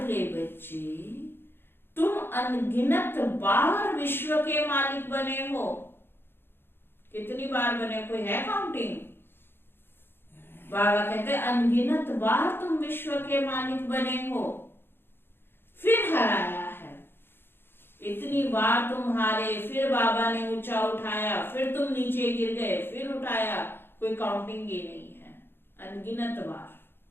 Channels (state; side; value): late; right; 0.10 ms